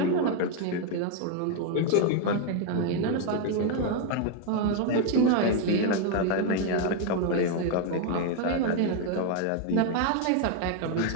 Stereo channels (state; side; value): different; both; correlation 0.01